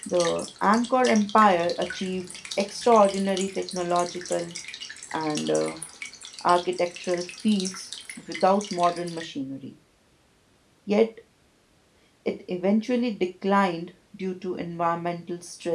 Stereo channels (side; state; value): both; identical; correlation 1.00